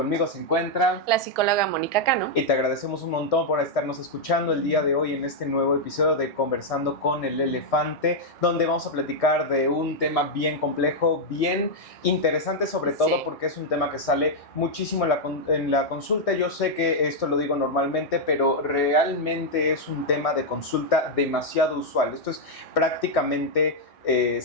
se encuentra la psicóloga Mónica Cano. Y te agradecemos un montón por estarnos escuchando el día de hoy en este nuevo episodio de Conversando con el Elefante, donde vamos a platicar de un tema bien complejo, bien interesante, sobre todo porque es un tema que sale muchísimo en la consulta. Yo sé que esto lo digo normalmente, pero realmente es un tema de consulta demasiado usual. Esto es prácticamente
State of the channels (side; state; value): right; late; 1.6 ms